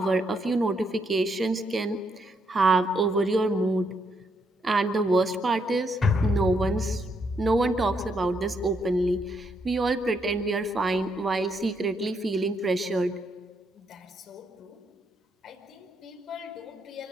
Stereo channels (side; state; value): both; normal; correlation 0.76